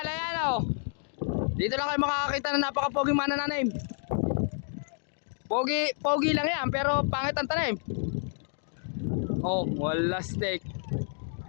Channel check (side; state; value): right; silent; digital silence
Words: ayan oh. Dito lang kayo makakakita na napaka-poging manananim. Pogi lang yan, pero pangit ang tanim. Oh, wala steak.